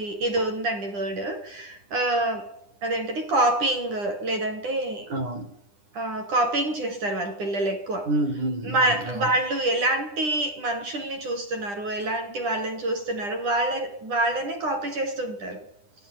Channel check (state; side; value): late; left; 9.9 ms